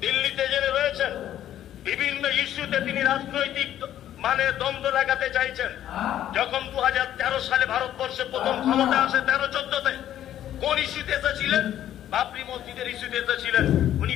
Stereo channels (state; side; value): quieter; right; 11.6 dB